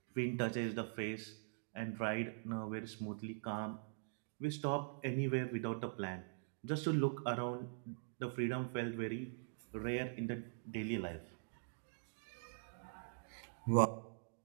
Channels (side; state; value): left; silent; digital silence